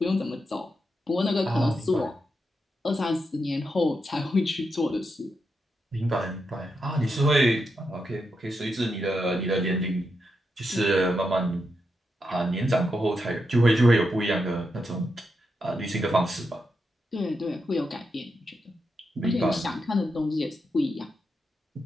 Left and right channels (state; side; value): normal; both; correlation 0.85